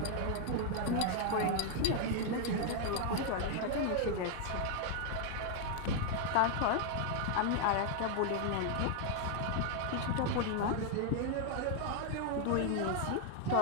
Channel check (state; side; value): different; both; correlation 0.00